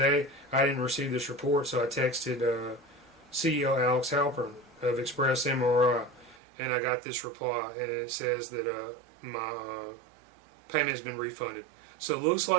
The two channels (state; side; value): drops out; left; at 6.4 s